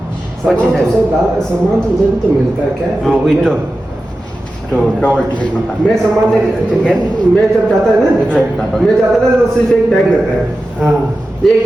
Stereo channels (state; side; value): normal; both; correlation 0.93